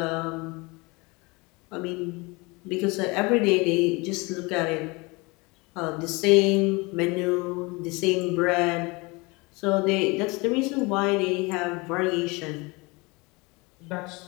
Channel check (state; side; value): quieter; right; 26.0 dB